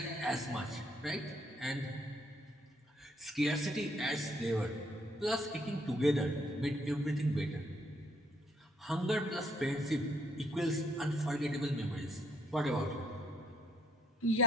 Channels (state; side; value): normal; both; correlation 0.69